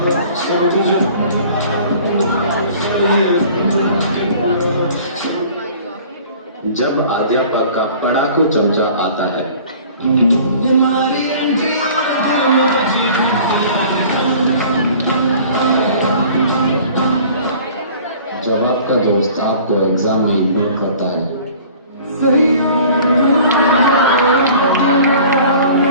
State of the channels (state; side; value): inverted; both; correlation -0.48